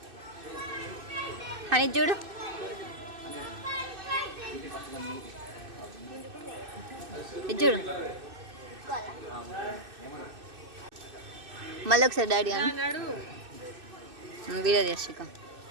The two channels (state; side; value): late; left; 2.6 ms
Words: అని చూడు, చూడు మళ్ళీ ఒకసారి డాడీ అని వీడియో చేసిక